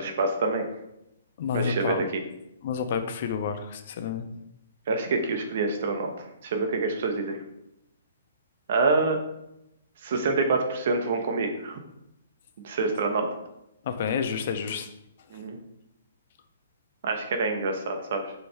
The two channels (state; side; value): inverted; both; correlation -0.52